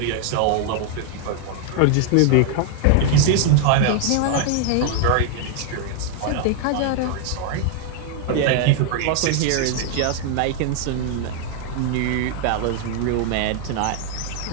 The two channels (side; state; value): both; different; correlation 0.00